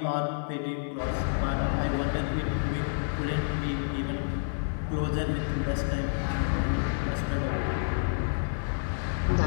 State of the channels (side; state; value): right; silent; 59 dB below the other